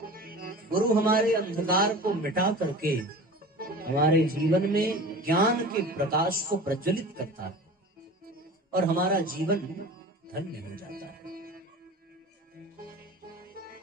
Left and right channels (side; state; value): both; normal; correlation 0.37